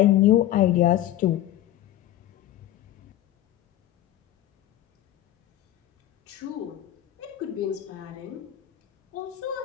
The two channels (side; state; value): right; quieter; 13.3 dB